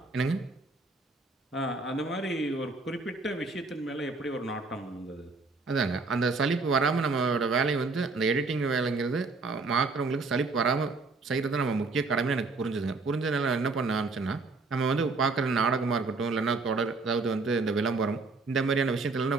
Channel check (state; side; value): quieter; left; 3.8 dB